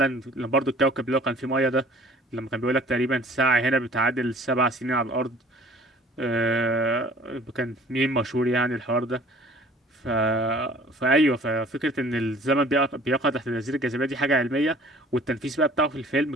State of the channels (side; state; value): both; normal; correlation 0.51